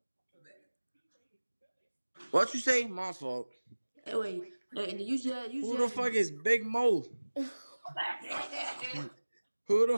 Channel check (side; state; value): both; inverted; correlation -1.00